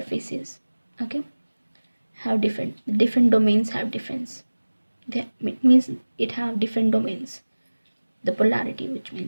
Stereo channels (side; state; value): both; inverted; correlation -1.00